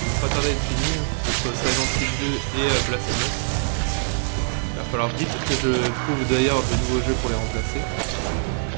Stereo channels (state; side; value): silent; left; digital silence